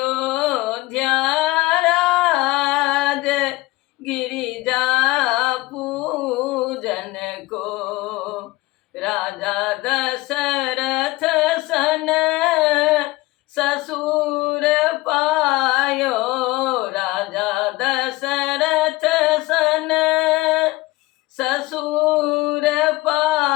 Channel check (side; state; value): right; quieter; 20.5 dB